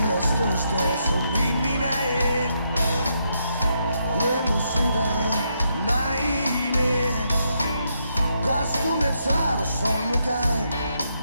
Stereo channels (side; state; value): both; inverted; correlation -0.79